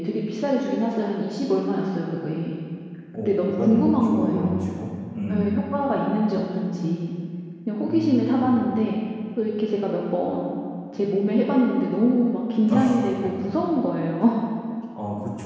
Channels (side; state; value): both; identical; correlation 1.00